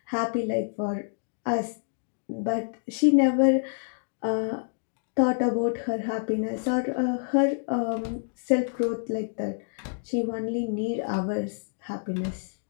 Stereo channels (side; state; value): right; silent; digital silence